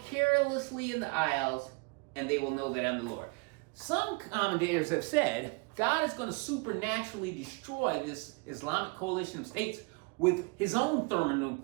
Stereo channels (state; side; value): quieter; left; 30.5 dB